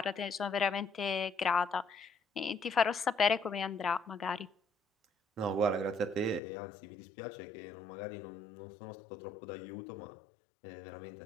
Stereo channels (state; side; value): drops out; right; at 6.4 s